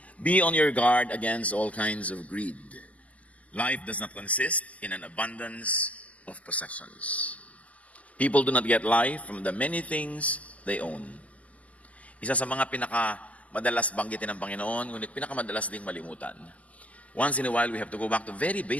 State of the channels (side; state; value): right; late; 0.072 ms